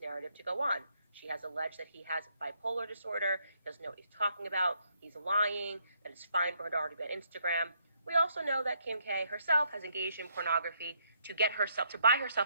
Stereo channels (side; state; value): both; inverted; correlation -0.72